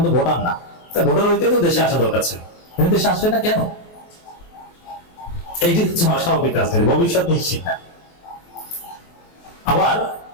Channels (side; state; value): right; late; 23 ms